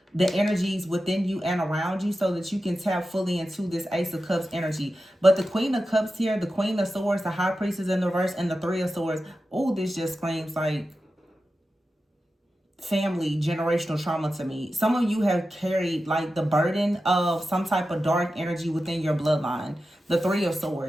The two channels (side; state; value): both; normal; correlation 0.92